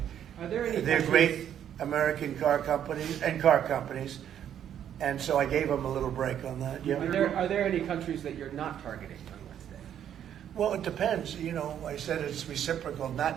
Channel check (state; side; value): quieter; left; 9.8 dB